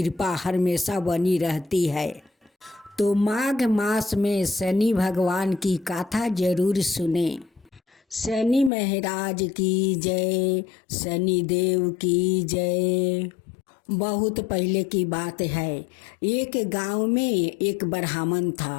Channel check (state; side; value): drops out; right; at 8.7 s